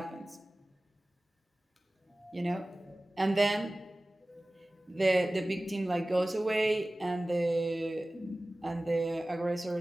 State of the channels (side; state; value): both; normal; correlation 0.97